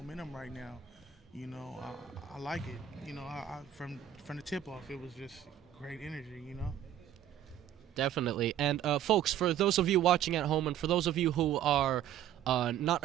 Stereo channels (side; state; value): left; quieter; 10.5 dB